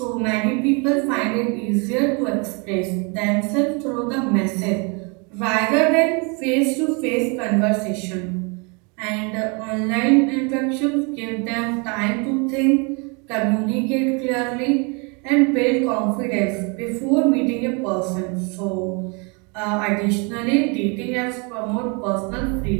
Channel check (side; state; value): left; quieter; 32.6 dB